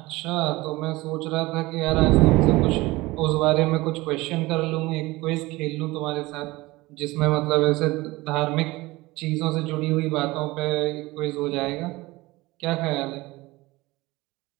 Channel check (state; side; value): quieter; left; 20.6 dB